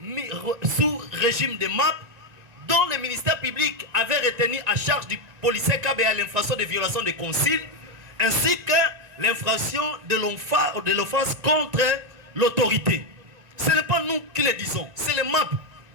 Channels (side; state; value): left; late; 1.9 ms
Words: mis sous régime de MAP, dont le ministère public avait retenu à charge du policier Kabeya l'infraction de violation de consigne, ainsi que l'infraction de l'offense contre l'autorité. Ce n'est pas nous qui le disons, c'est le MAP.